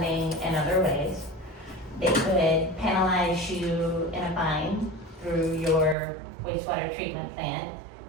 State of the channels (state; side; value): drops out; left; at 6.0 s